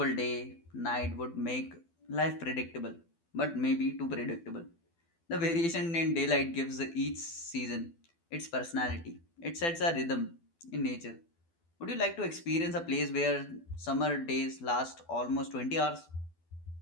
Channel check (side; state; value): right; late; 12 ms